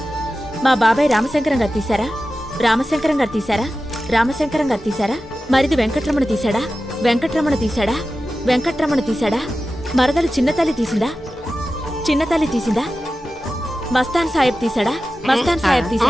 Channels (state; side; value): normal; both; correlation 0.94